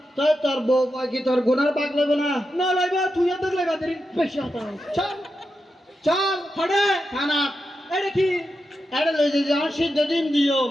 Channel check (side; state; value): both; normal; correlation 0.88